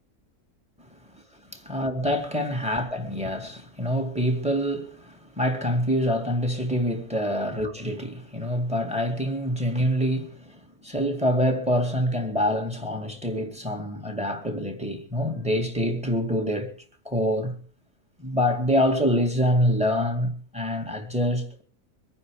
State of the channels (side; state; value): both; normal; correlation 0.38